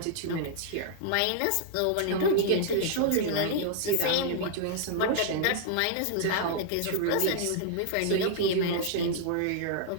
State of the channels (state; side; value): different; both; correlation -0.01